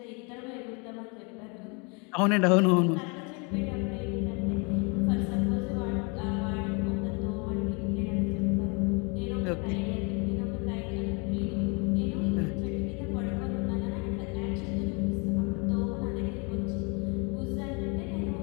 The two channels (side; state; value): right; quieter; 32.2 dB